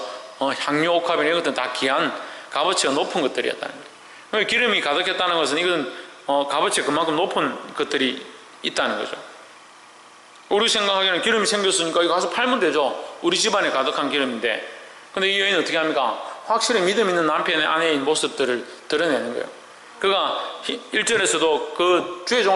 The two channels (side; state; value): both; identical; correlation 1.00